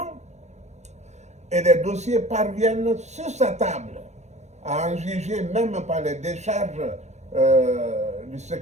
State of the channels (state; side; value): late; left; 0.33 ms